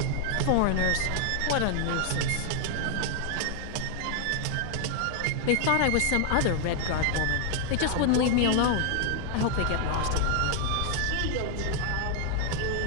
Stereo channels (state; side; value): different; both; correlation 0.00